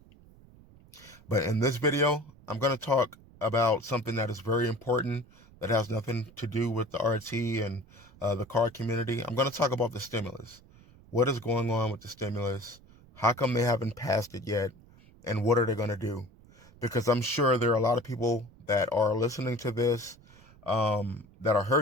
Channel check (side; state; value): right; noise; rumble, 24 dB below the sound